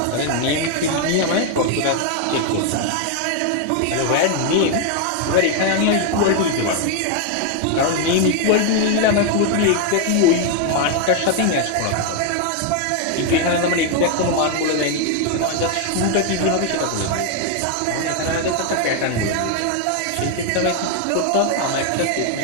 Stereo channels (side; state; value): both; different; correlation 0.01